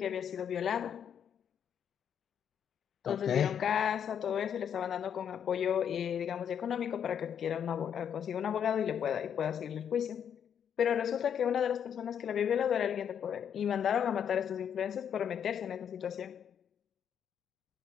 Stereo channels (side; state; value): right; quieter; 8.5 dB